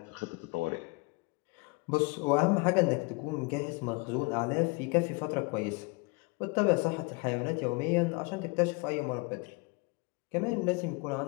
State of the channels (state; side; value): quieter; right; 28.6 dB